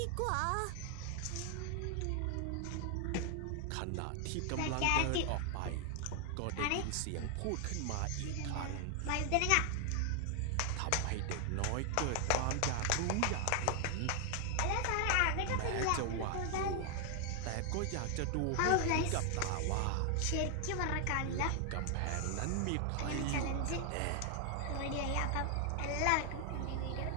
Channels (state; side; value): different; both; correlation 0.00